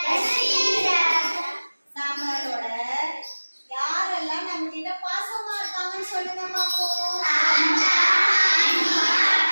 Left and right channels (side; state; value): both; inverted; correlation -1.00